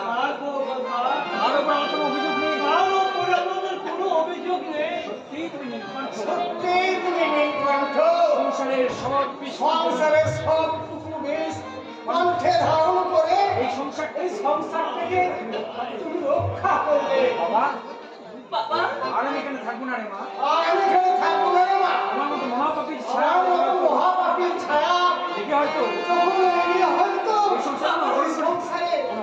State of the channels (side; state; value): both; identical; correlation 1.00